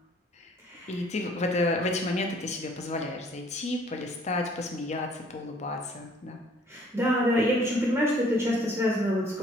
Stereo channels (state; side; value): normal; both; correlation 0.58